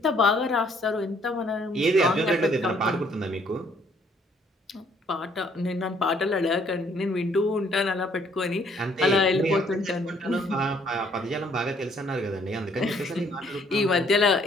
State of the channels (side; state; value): both; normal; correlation 0.64